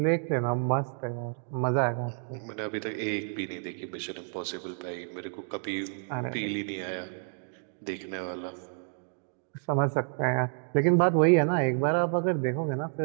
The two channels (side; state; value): left; silent; 58 dB below the other